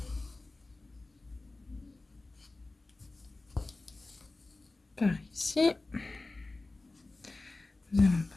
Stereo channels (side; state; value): right; quieter; 3.2 dB